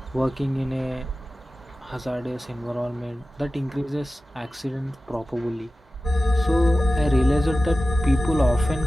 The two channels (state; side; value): normal; both; correlation 0.95